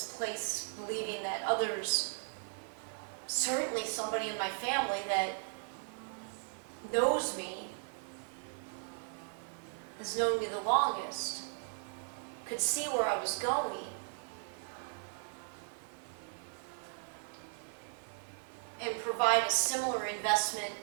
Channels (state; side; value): silent; left; 53 dB below the other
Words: place, believing that others, certainly somebody in my family that knows me, has known me the longest, could see where I was going, and provide a similar investment